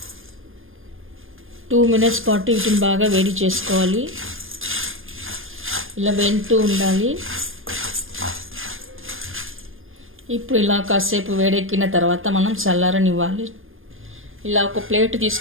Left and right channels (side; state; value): left; late; 0.59 ms